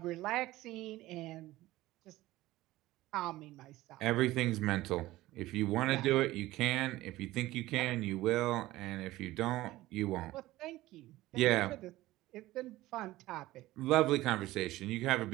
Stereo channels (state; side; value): quieter; left; 17.1 dB